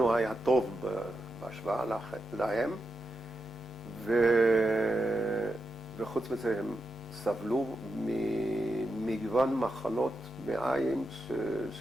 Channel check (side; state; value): both; normal; correlation 0.87